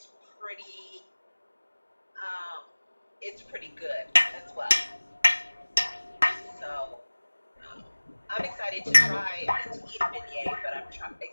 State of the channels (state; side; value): inverted; both; correlation -1.00